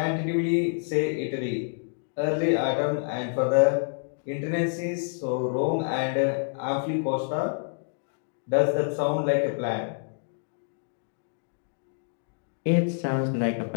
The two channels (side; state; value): right; silent; digital silence